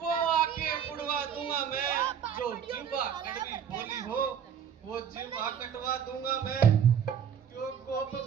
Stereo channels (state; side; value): quieter; left; 8.1 dB